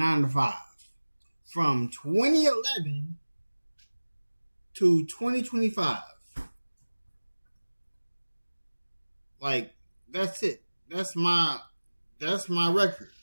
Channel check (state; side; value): inverted; both; correlation -1.00